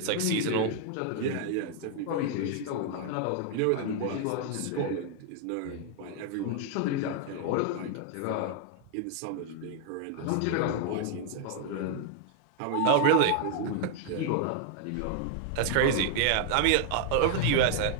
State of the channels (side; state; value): both; different; correlation 0.00